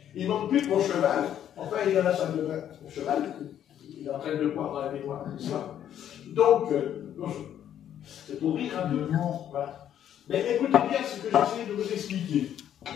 Il manque plus que mon cheval. Enfin, il en a sa de mon cheval, il est en train de le voir dans la mémoire. Donc, c'est pour rire un peu. Voilà. Mais écoutez bien ce que j'essaie de vous expliquer.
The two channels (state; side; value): quieter; right; 10.3 dB